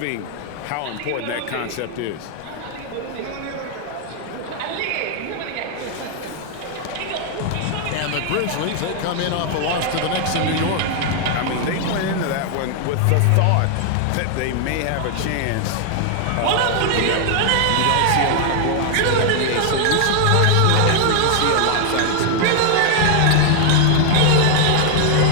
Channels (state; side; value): different; both; correlation 0.00